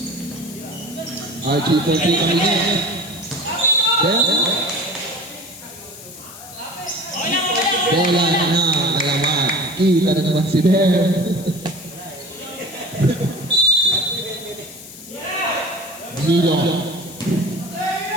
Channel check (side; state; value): left; noise; hiss, 16 dB below the sound